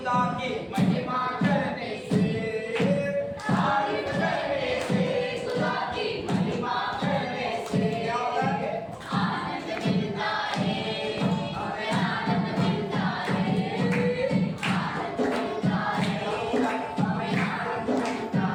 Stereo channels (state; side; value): identical; both; correlation 1.00